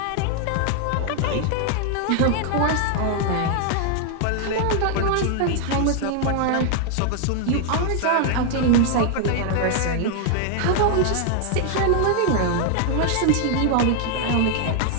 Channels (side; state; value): both; different; correlation 0.00